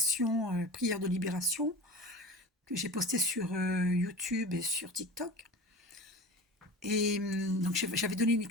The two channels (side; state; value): both; normal; correlation 0.33